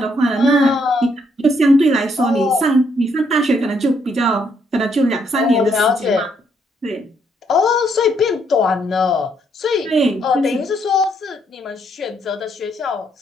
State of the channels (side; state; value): both; normal; correlation 0.72